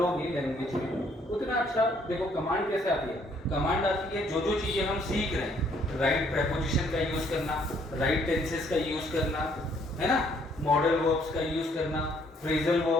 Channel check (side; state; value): both; normal; correlation 0.65